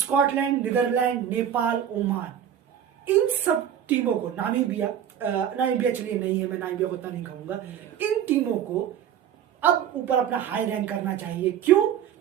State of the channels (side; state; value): left; quieter; 9.6 dB